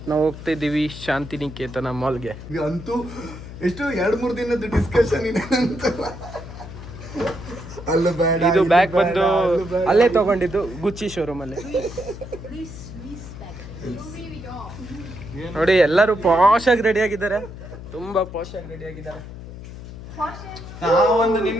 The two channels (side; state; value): left; noise; hum, 12 dB below the sound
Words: ನಾವು ಹೋಗ್ತಾ ಇದ್ದೀವಿ ಶಾಂತಿನಿಕೇತನ ಮಾಲ್ಗೆ. ಅಂತೂ ಎಷ್ಟು 2-3 ದಿನದ ಡಿಸ್ಕಷನ್ ಇದೆ ಅಂತ. ಅಲ್ಲ ಬೇಡ, ಇದು ಬ್ಯಾಗ್ ಬಂದು ಅಲ್ಲೇ ತಗೊಂಡಿದ್ದು, ಗುಚ್ಚಿ ಶೋರೂಮ್ ಅಲ್ಲಿ. ನೋಡಿ ಎಲ್ಲರೂ ಪಾಶ್ ಆಗಿ ರೆಡಿ ಆಗಿದ್ದಾರೆ, ತುಂಬಾ ಪಾಶ್ ಆಗಿ ರೆಡಿ ಆಗಿದ್ದಾರೆ. ನಾವೊಂದು